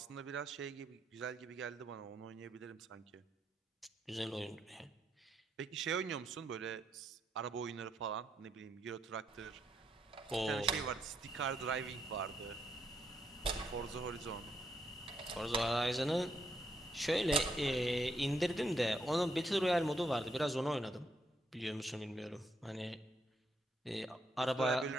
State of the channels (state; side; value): normal; both; correlation 0.77